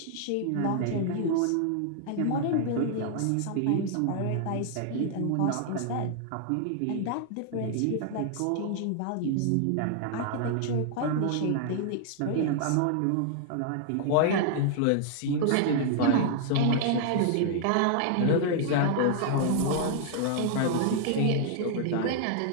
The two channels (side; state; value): both; different; correlation -0.01